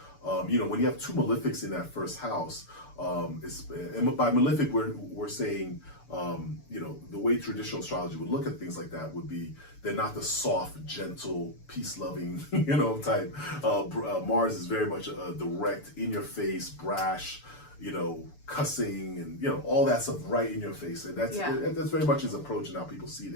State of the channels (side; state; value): right; late; 6.9 ms